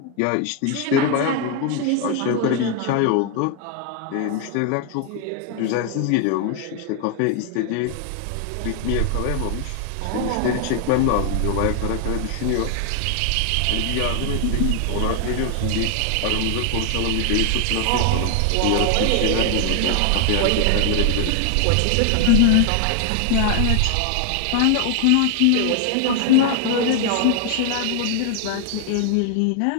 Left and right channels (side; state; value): both; different; correlation 0.00